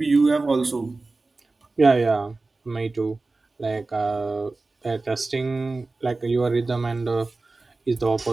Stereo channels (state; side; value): quieter; left; 3.5 dB